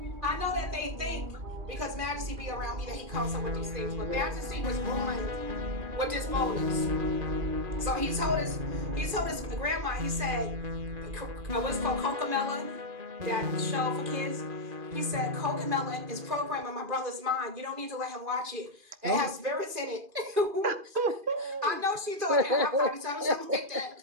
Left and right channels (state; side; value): late; left; 2.4 ms